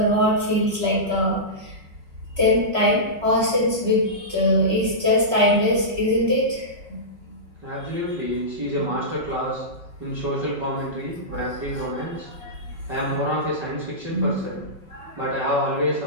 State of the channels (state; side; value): late; left; 5.4 ms